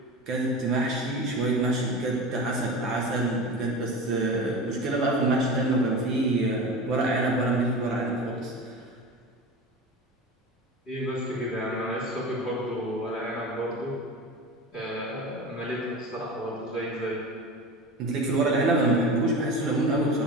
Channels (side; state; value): both; normal; correlation 0.30